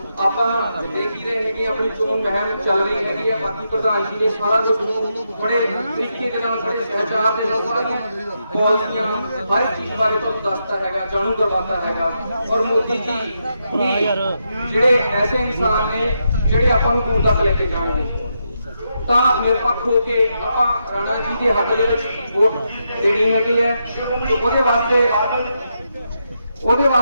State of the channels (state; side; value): inverted; both; correlation -0.83